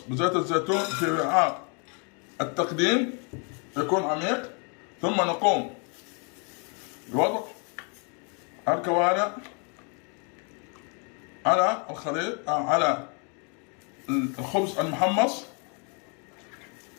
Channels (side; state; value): right; quieter; 36.8 dB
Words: الزيتون في وعاء التقديم يكون عميق، ثم نقوم بوضع الكوارع على الخليط على الخبز المحمص